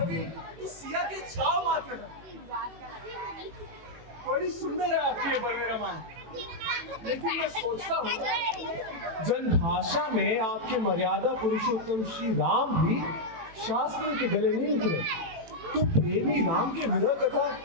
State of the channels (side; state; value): left; late; 18 ms